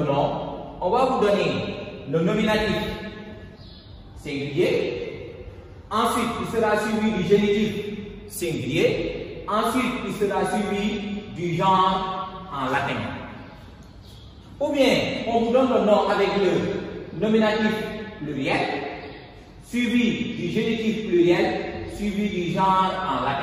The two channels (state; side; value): identical; both; correlation 1.00